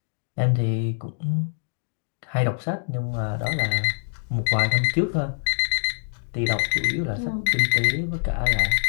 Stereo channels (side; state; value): right; silent; digital silence